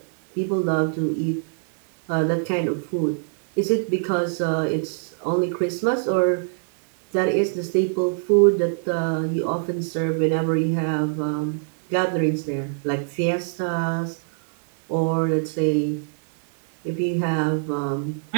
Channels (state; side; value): silent; left; 63 dB below the other